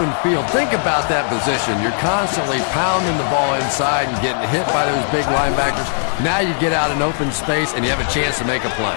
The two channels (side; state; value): right; silent; 56 dB below the other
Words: field, think about that position. You're constantly pounding the ball inside and getting hit by those big linebackers. Now you get out in open space and you have a chance to make a play.